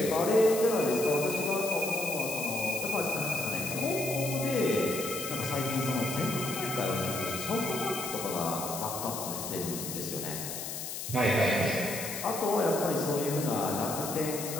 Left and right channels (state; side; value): noise; left; hiss, 6 dB below the sound